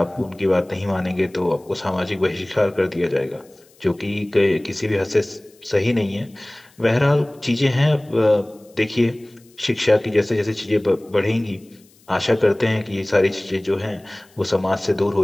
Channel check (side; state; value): left; noise; hiss, 30 dB below the sound